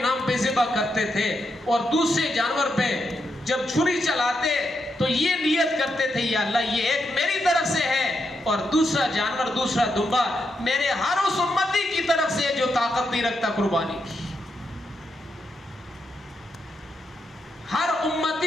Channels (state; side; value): normal; both; correlation 0.83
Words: نام پہ ذبح کرتے تھے، اور دوسرے جانور پہ جب چھری چلاتے تو یہ نیت کرتے تھے، یا اللہ یہ ایک میری طرف سے ہے اور دوسرا جانور، دوسرا دمبا میرے ہر اس امتی کی طرف سے جو طاقت نہیں رکھتا قربانی کی، ہر